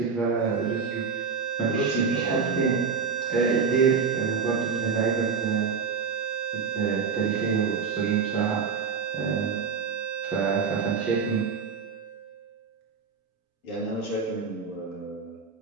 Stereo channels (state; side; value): quieter; left; 5.7 dB